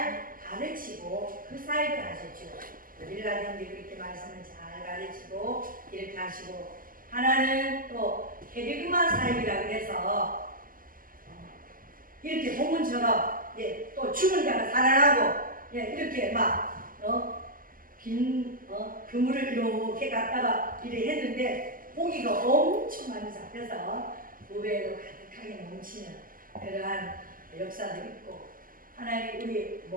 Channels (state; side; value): late; left; 0.41 ms